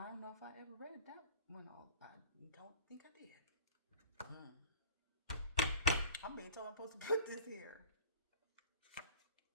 don't know if I ever read that one. I don't think I did. I'm being told I'm supposed to put this here.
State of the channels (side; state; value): both; inverted; correlation -0.37